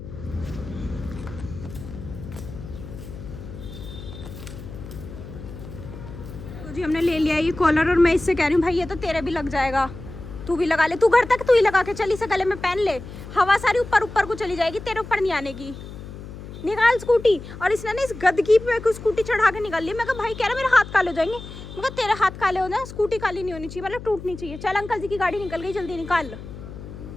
तो जी हमने ले लिया ये कॉलर, और मैं इससे कह रही हूँ भाई ये तो तेरे भी लग जाएगा, तू भी लगा ले। तू घर तक तू ही लगा के चल, इसे गले में पहन ले, हवा सारी ऊपर ऊपर को चली जाएगी, तेरे ऊपर नहीं आने की। निकाल स्कूटी। और इसने ना इस गदगी पे स्कूटी चढ़ा के निकाल ली। मैं कहा भाई कह रहा मेरे हाथ काले हो जाएंगे। मैं कहा तेरे हाथ काले हो जाए, स्कूटी काली नहीं होनी चाहिए, मतलब टूटनी चाहिए। चल अंकल जी की गाड़ी निकल गई, जल्दी निकाल।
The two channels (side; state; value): left; noise; hum, 13 dB below the sound